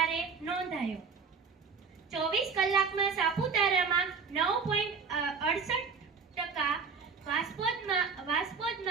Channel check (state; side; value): quieter; left; 5.3 dB